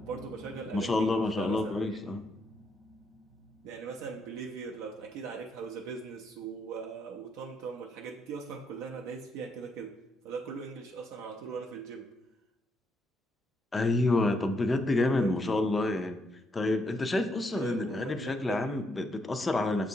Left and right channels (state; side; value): normal; both; correlation 0.76